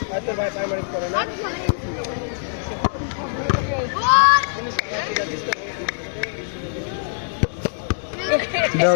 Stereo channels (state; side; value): silent; right; digital silence